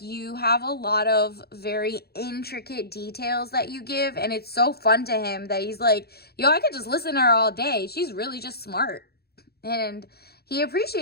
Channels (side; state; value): right; late; 0.46 ms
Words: you have a lot of very intricate details that you give, and it's so fun to him that he's like, yo, I could just listen to her all day. She's really just smart. And he